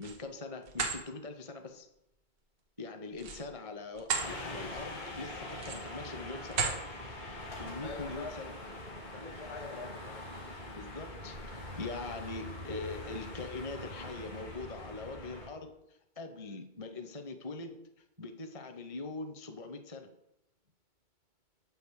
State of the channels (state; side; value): late; left; 2.2 ms